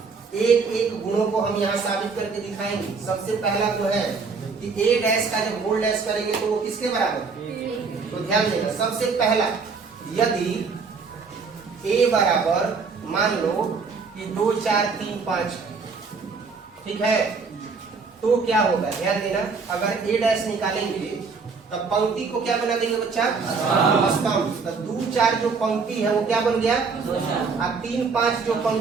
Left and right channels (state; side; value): quieter; left; 4.9 dB